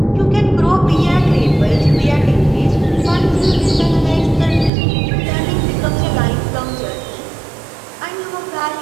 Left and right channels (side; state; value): left; drops out; at 4.7 s